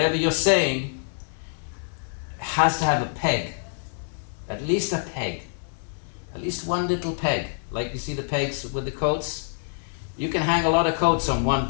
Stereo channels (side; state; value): right; silent; 61 dB below the other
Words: you're saying has to have a peg. At least a peg. At least one little peg. Like you see the pegs with the coats? You can hang a lot of coats on one